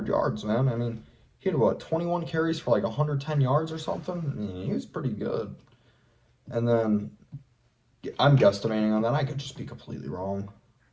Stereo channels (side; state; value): both; identical; correlation 1.00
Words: yards, man. I mean, he had, 21 carries for like 110 yards or something? I mean, he was pretty good. And then, I'm guesstimating on that. I could just be completely wrong.